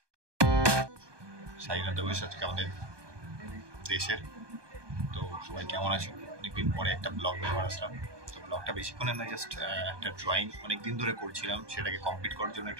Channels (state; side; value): late; left; 1.2 ms